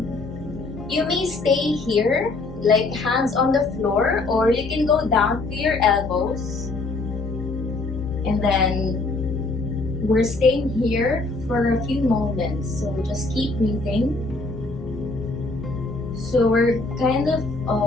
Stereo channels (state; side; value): quieter; right; 3.4 dB